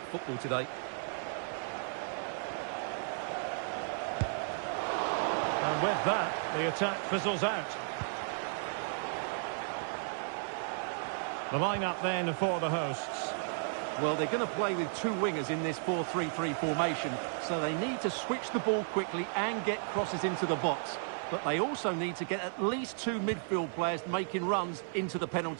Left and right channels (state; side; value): silent; left; 55 dB below the other